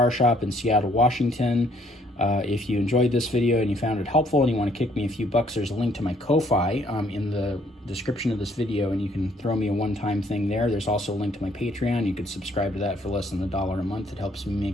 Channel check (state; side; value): normal; both; correlation 0.65